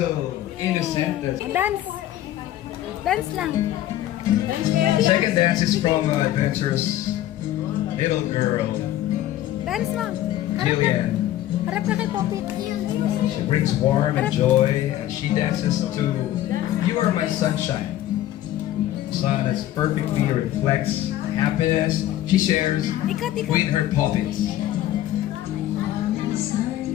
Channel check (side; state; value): right; quieter; 13.4 dB